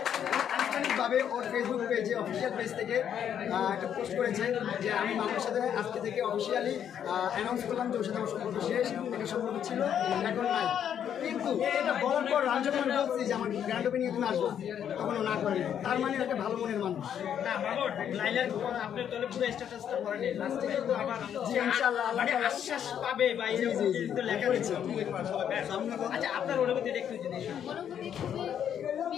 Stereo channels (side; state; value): right; quieter; 9.1 dB